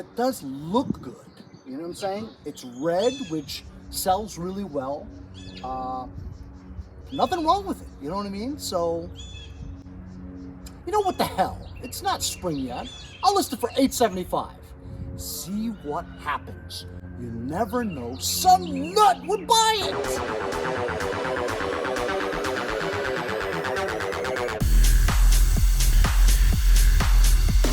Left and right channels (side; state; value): both; identical; correlation 1.00